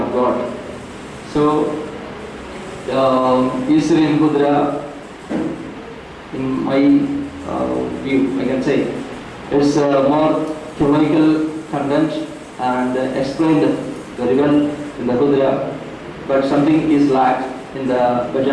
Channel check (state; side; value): identical; both; correlation 1.00